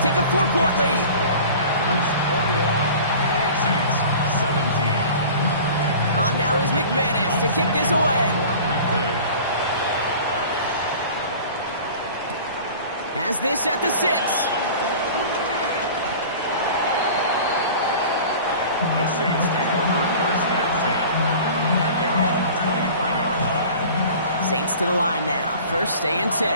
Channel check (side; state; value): both; inverted; correlation -0.41